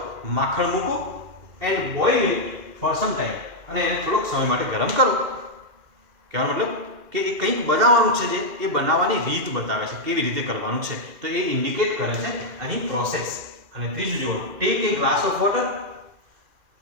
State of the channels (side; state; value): left; late; 2.7 ms